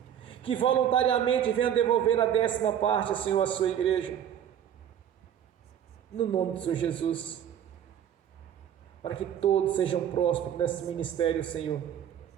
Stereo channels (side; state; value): left; quieter; 9.7 dB